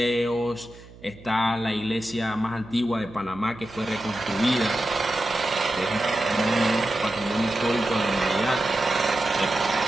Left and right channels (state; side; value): noise; right; hum, 20 dB below the sound